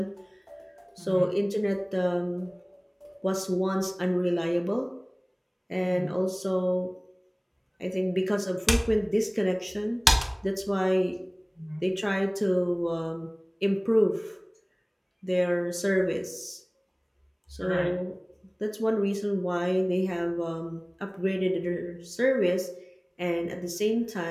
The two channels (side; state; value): both; identical; correlation 1.00